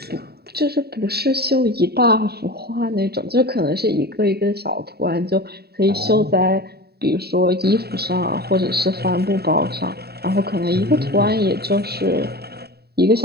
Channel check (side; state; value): left; late; 0.46 ms